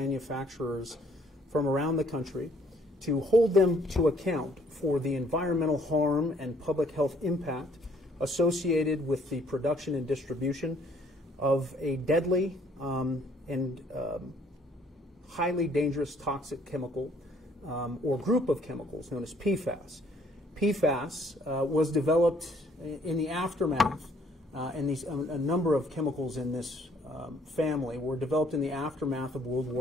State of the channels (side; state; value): both; normal; correlation 0.63